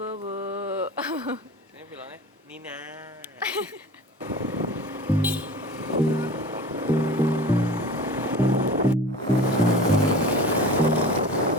Ini bilangnya Nina.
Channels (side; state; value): both; normal; correlation 0.38